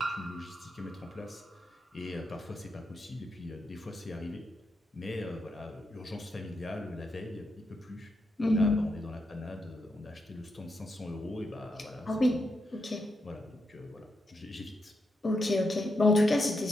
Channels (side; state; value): both; normal; correlation 0.83